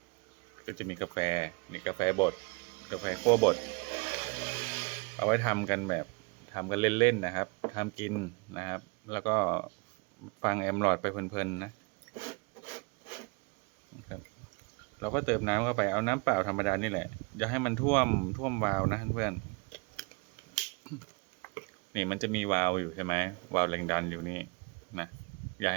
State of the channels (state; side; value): quieter; left; 31.4 dB